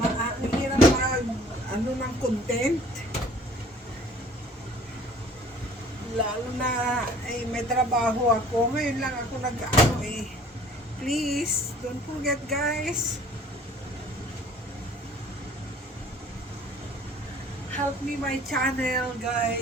ano ng content. Lalo na may trabaho ako. Ngayon lang ako nag-ano eh. Please, don't forget, guys. Help me my channel,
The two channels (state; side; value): normal; both; correlation 0.53